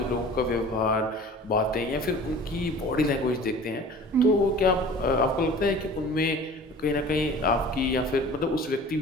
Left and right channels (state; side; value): normal; both; correlation 0.43